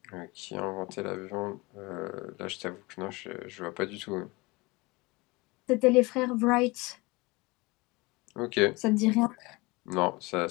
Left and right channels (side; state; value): right; quieter; 24.2 dB